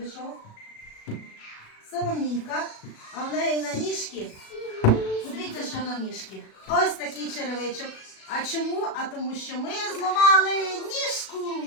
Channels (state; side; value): late; right; 37 ms